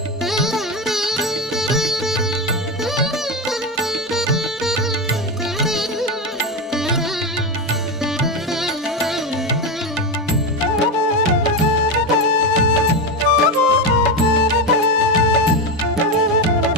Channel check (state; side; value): normal; both; correlation 0.14